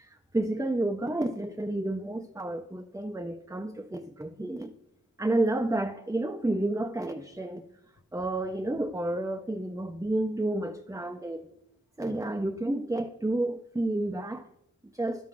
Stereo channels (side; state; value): both; normal; correlation 0.87